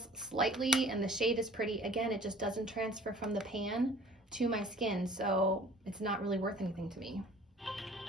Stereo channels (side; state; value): both; normal; correlation 0.49